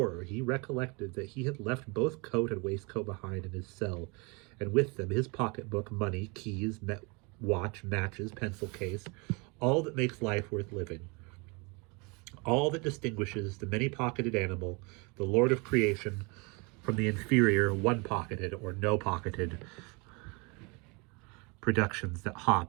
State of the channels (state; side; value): quieter; left; 29.7 dB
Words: he recollected that he had left both coat and waistcoat behind in his cell, and with them his pocketbook, money, keys, watch, matches, pencil case, all that makes life worth living. All that distinguishes the many-pocketed animal, the lord of creation, from the inferior, one-pocketed or no-pocketed productions that